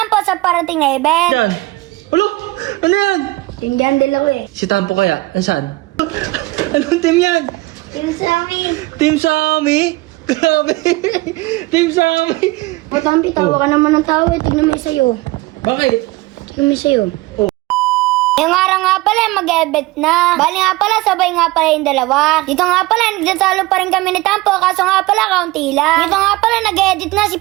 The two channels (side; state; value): left; quieter; 20.6 dB